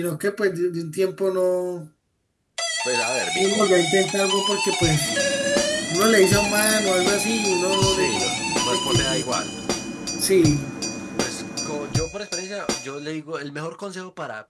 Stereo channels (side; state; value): both; identical; correlation 1.00